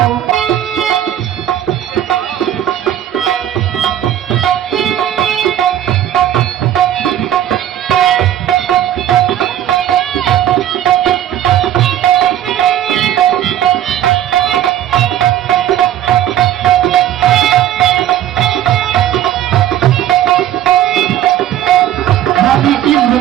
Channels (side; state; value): left; quieter; 11.6 dB